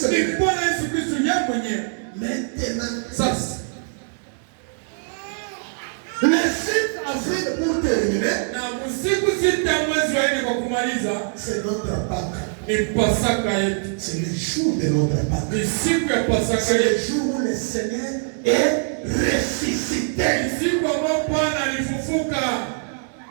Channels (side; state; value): left; silent; 59 dB below the other